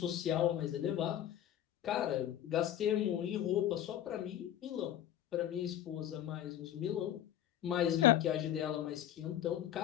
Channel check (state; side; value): quieter; right; 11.4 dB